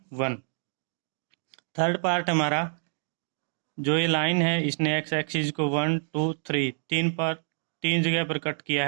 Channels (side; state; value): left; silent; digital silence